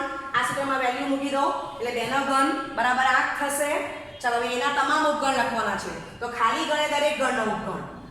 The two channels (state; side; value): identical; both; correlation 1.00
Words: આ સૂત્રમાં વેલ્યુ મૂકી દો એટલે 2 નો ઘન બરાબર 8 થશે. ચાલો હવે એના તમામ ઉપગણ લખવાના છે. તો ખાલી ગણે દરેક ગણનો ઉપગણ